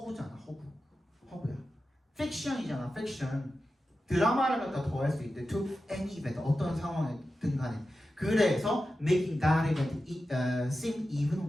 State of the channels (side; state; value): both; normal; correlation 0.92